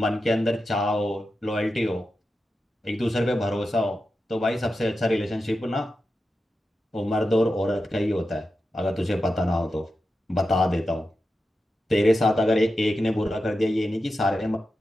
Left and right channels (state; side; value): normal; both; correlation 0.90